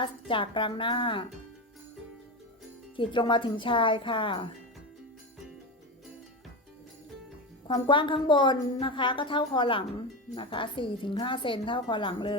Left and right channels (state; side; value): normal; both; correlation 0.19